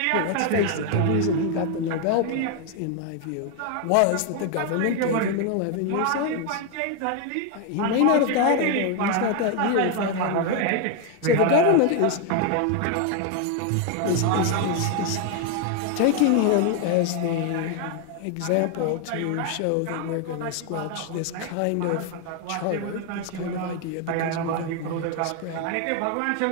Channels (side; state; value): both; different; correlation 0.01